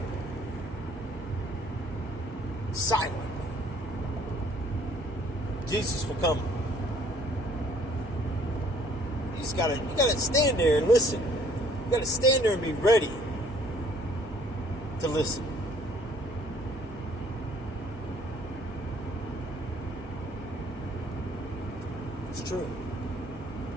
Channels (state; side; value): normal; both; correlation 0.59